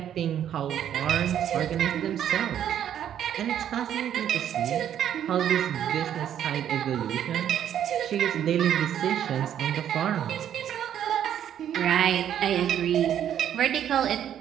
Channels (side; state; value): left; quieter; 10.1 dB